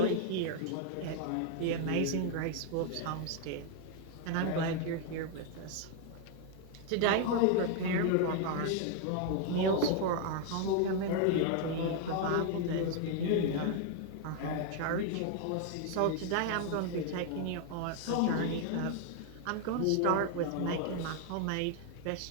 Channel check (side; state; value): both; different; correlation 0.00